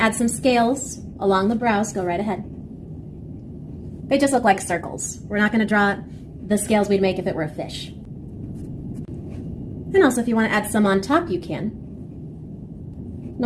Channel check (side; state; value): both; identical; correlation 1.00